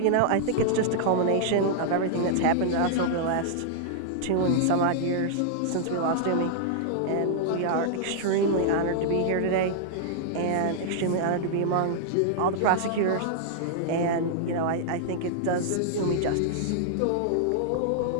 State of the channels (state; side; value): different; both; correlation -0.01